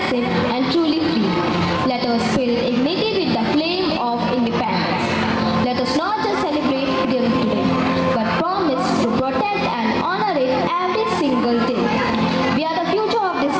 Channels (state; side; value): identical; both; correlation 1.00